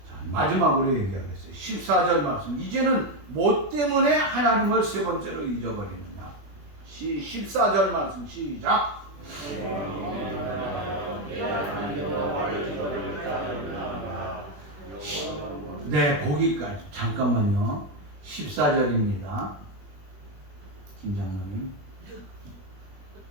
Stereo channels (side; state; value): left; late; 21 ms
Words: 자, 마지막으로 얘기하겠어요. 14절 말씀. 이제는 뭐 때문에 하나님을 세 번째로 잊어버리느냐. 14절 말씀 시작. 네, 거기까지. 잠깐만요. 14절입니다. 김장로님.